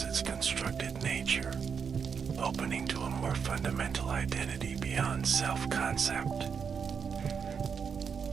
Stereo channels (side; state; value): left; quieter; 6.5 dB